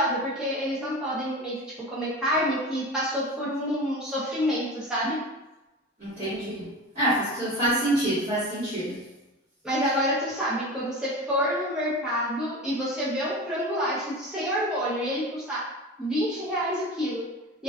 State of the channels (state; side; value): normal; both; correlation 0.30